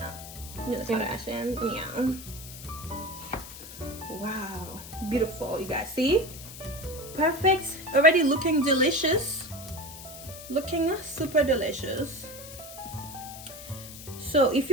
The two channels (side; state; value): left; noise; hiss, 14 dB below the sound